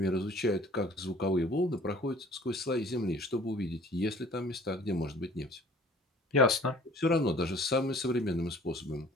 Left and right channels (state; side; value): normal; both; correlation 0.52